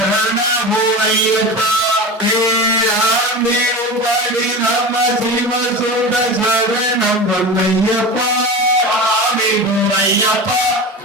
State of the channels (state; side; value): normal; both; correlation 0.28